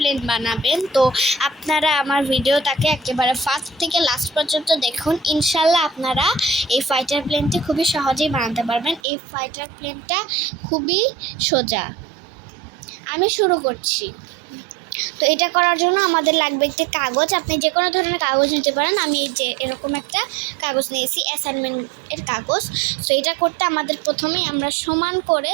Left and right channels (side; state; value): left; drops out; at 9.0 s